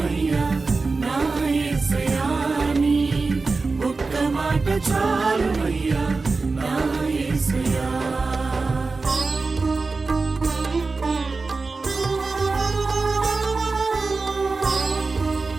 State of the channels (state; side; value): quieter; left; 3.9 dB